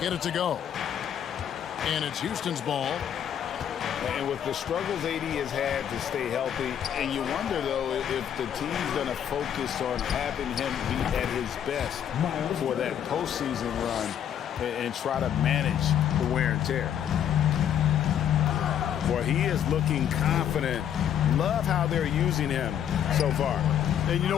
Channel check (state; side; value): quieter; right; 9.5 dB